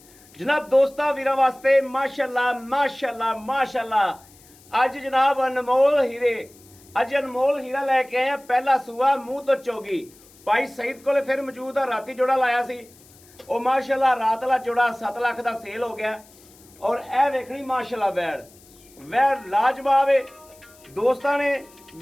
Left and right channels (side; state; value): left; noise; hiss, 26 dB below the sound